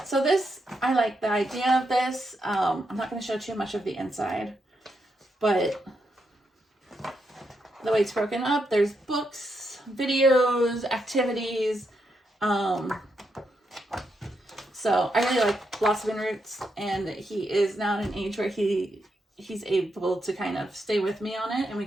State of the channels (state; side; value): normal; both; correlation 0.82